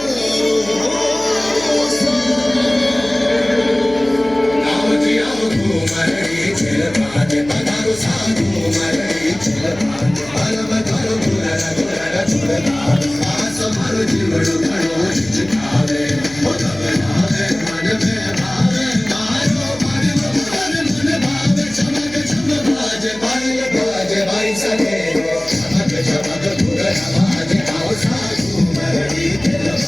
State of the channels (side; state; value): left; noise; hum, 19 dB below the sound